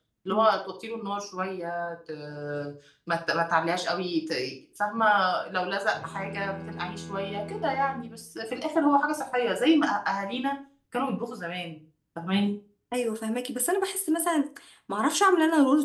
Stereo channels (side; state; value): both; identical; correlation 1.00